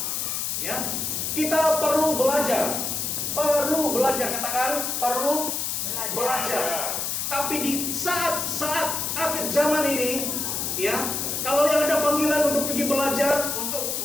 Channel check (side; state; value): left; noise; hiss, 1 dB below the sound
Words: Ya, kita perlu belajar, katakan perlu belajar. Tapi di saat akhir zaman ini, ya, kalau yang ada panggilan untuk pergi belajar untuk